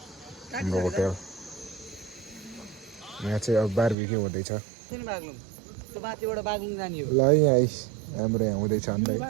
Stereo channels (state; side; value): drops out; left; at 4.0 s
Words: हाम्रो होटेल यहाँ चाहिँ अब बारबिक्यू हुँदैछ ल यहाँ हाम्रो यहाँ हुँदैछ अन्त के